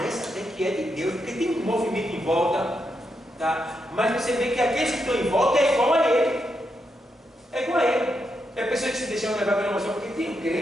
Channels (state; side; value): normal; both; correlation 0.83